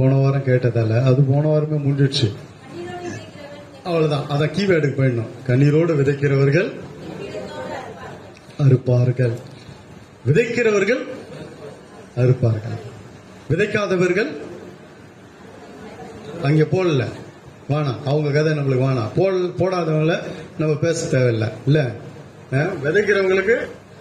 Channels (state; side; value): identical; both; correlation 1.00